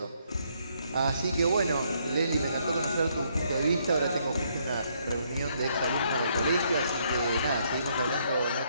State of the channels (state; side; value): inverted; both; correlation -0.71